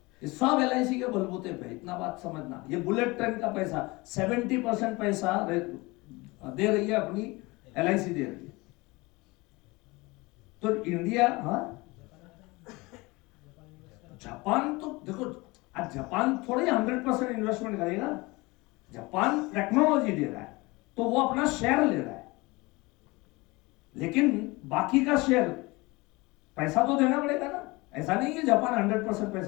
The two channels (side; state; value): right; quieter; 23.5 dB